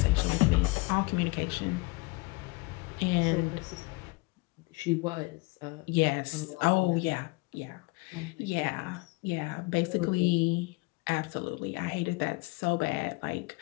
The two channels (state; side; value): quieter; right; 25.5 dB